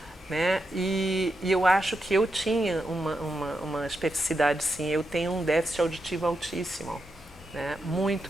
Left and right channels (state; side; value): normal; both; correlation 0.86